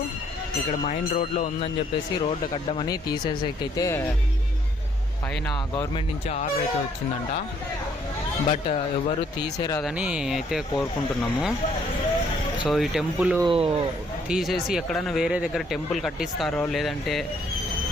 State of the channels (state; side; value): normal; both; correlation 0.66